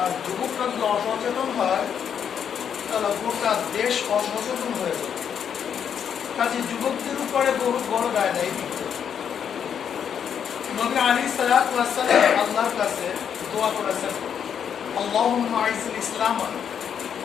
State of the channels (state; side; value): quieter; right; 8.0 dB